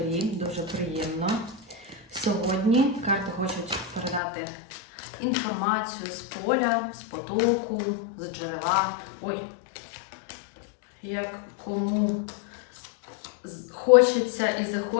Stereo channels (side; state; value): right; drops out; at 4.2 s